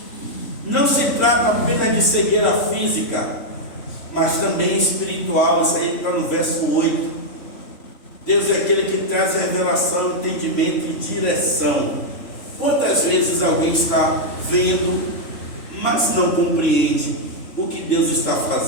Não se trata apenas de cegueira física, mas também espiritual. Isso aí está no verso 8. Deus é aquele que traz revelação, entendimento e direção. Quantas vezes alguém está vendo, mas não compreende o que Deus está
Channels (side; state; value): right; late; 3.4 ms